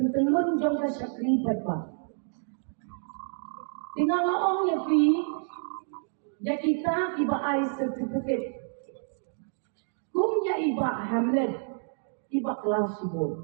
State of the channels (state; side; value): silent; left; digital silence